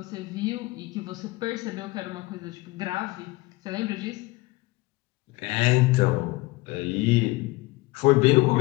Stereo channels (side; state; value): right; quieter; 21.4 dB